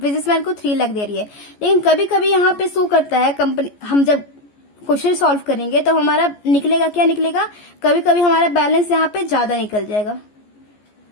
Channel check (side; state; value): right; late; 14 ms